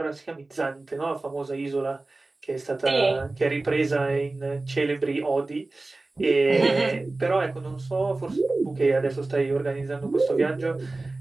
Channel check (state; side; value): quieter; left; 3.2 dB